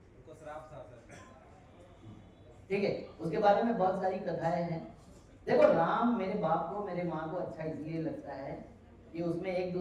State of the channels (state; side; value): identical; both; correlation 1.00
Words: उनको श्राप था सर। ठीक है, उसके बारे में बहुत सारी कथाएं हैं। देखो, राम मेरे बाप को, मेरे माँ को अच्छा इसलिए लगता है कि उसमें एक